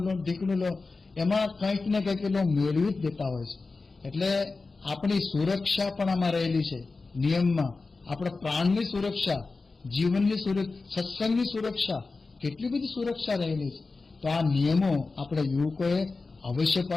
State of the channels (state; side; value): quieter; right; 3.9 dB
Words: લો, ઢીકણું લો, એમાં કંઈક ને કંઈક એ મેળવી જ દેતા હોય છે. એટલે આપણી સુરક્ષા પણ આમાં રહેલી છે નિયમમાં. આપણા પ્રાણની સુરક્ષા, જીવનની સુરક્ષા, સત્સંગની સુરક્ષા, કેટલી બધી સુરક્ષા રહેલી છે. તો આ નિયમો આપણે યુવકોએ અવશ્ય